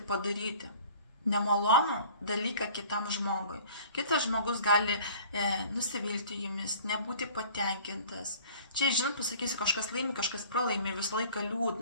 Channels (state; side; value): inverted; both; correlation -0.48